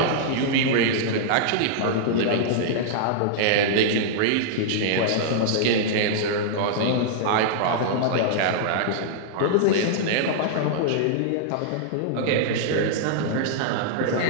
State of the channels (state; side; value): different; both; correlation -0.01